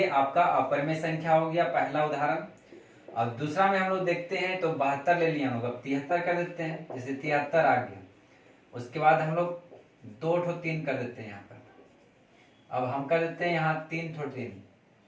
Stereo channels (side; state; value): both; identical; correlation 1.00